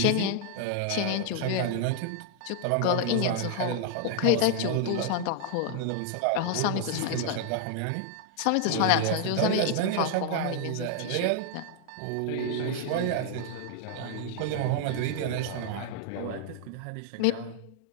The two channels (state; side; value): different; both; correlation 0.00